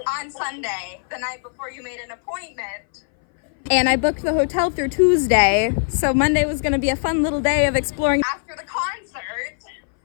On Sunday, the night before you made an appointment. And I booked the hotel through Tuesday, so Monday was going to be a fun little day of exploring after the concert.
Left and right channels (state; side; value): silent; right; 60 dB below the other